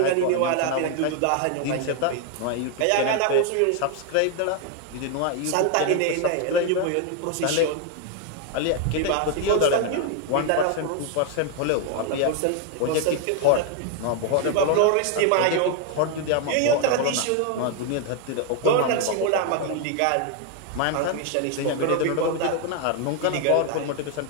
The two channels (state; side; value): different; both; correlation 0.01